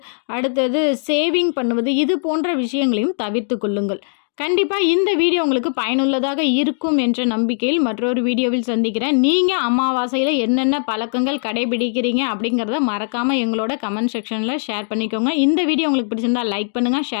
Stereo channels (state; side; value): silent; right; digital silence